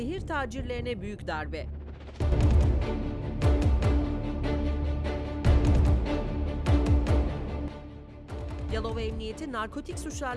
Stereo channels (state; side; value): identical; both; correlation 1.00